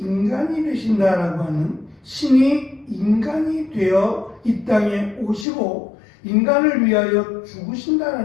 되신다라고 하는 신이 인간이 되어 이 땅에 오시고 인간을 위하여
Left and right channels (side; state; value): right; drops out; at 5.5 s